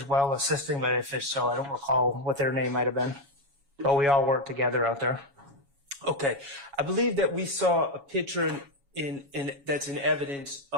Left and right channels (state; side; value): late; left; 7.2 ms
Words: well assisting, but if it's so, I don't recall what their name might have been. But we all worked together out there. Okay. I believe that we saw a picture that's in evidence